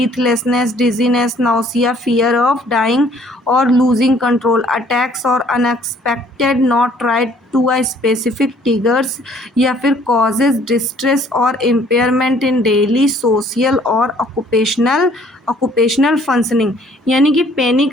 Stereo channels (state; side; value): normal; both; correlation 0.59